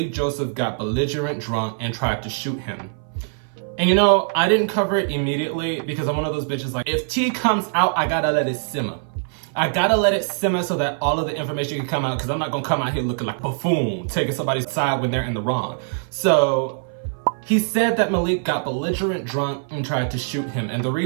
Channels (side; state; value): left; silent; 58 dB below the other